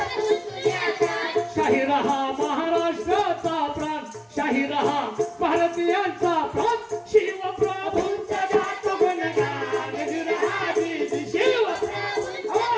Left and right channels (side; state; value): both; identical; correlation 1.00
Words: शाहीर हा महाराष्ट्राचा प्राण, शाहीर हा भारतीयांचा प्राण. शिवप्रभूंचा जात गुणगान विराजी, शिवप्रभूंचा